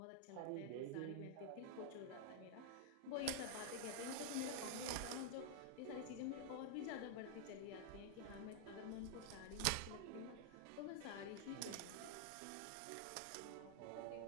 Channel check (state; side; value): different; both; correlation -0.01